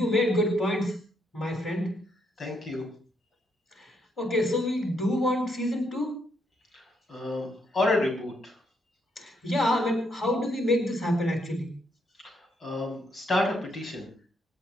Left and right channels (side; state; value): both; normal; correlation 0.75